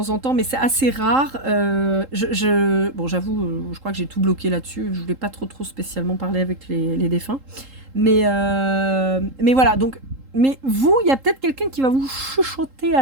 en temps, mais c'est assez rare. Bon, j'avoue, je crois que j'ai tout bloqué là-dessus. Je voulais pas trop spécialement parler avec les défunts. Mais voilà, donc... Mais vous, il y a peut-être quelqu'un qui va vous chuchoter à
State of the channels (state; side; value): late; left; 3.8 ms